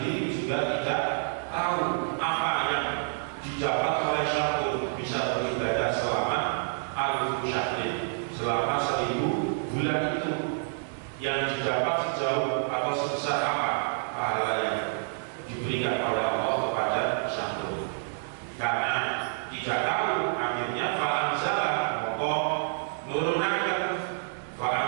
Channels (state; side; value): silent; left; digital silence